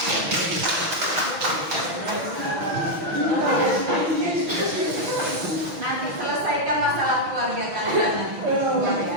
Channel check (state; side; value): late; left; 6.2 ms